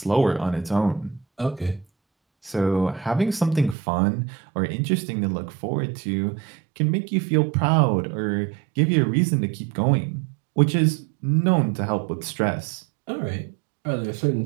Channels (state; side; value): drops out; left; at 3.8 s